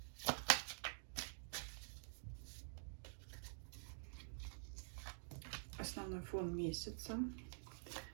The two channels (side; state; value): left; silent; digital silence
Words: Основной фон месяца.